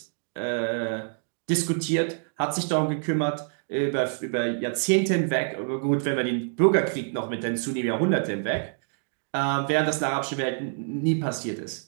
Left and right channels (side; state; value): left; silent; digital silence